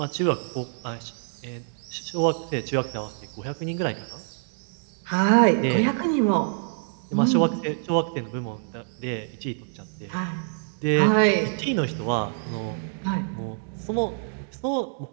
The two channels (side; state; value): left; silent; digital silence